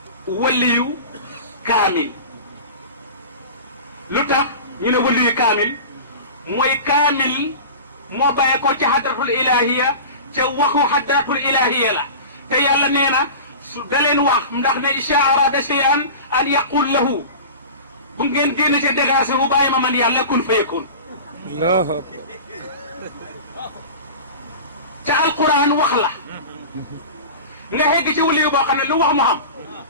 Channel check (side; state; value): both; inverted; correlation -0.33